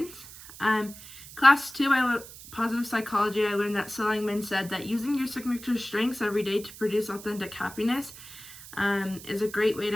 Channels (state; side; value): noise; right; hiss, 16 dB below the sound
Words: Class 2, positive psychology, I learned that Seligman said that using your signature strengths every day to produce authentic happiness is a great way